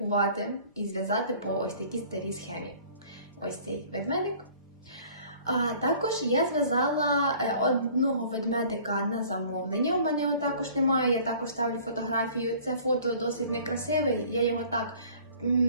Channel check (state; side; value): inverted; both; correlation -0.51